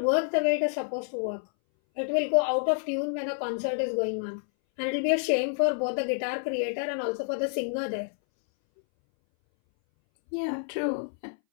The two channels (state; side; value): silent; right; 59 dB below the other